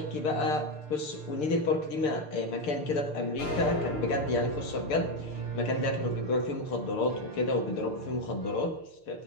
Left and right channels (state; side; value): late; right; 6.7 ms